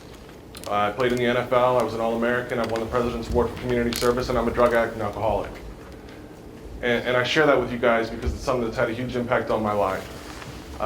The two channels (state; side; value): identical; both; correlation 1.00